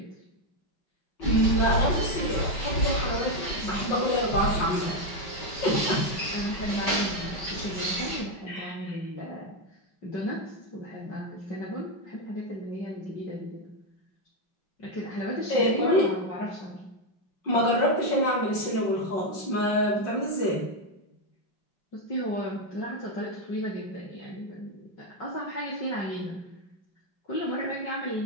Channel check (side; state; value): right; late; 5.6 ms